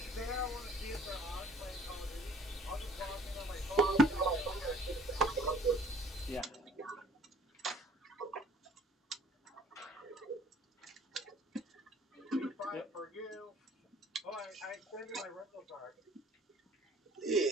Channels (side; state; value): both; normal; correlation 0.54